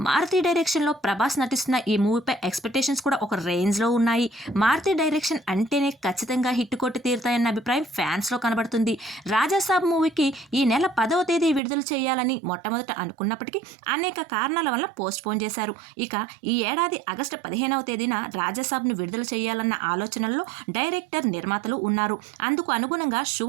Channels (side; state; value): left; drops out; at 11.6 s